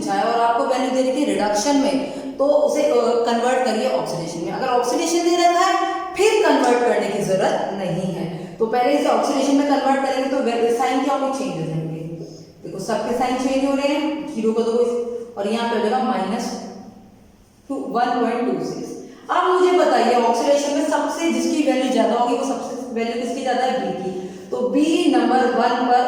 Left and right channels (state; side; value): identical; both; correlation 1.00